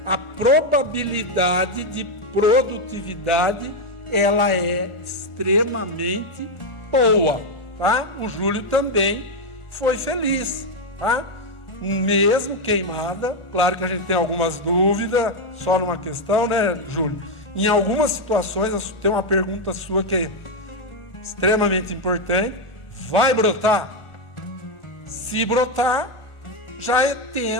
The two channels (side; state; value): right; late; 1.4 ms